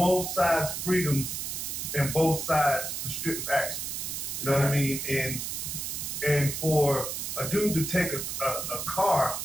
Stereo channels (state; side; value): noise; right; hiss, 4 dB below the sound